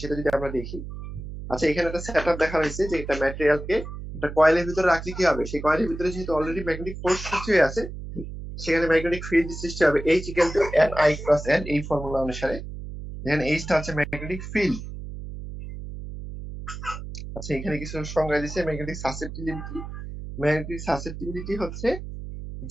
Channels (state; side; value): noise; right; hum, 9 dB below the sound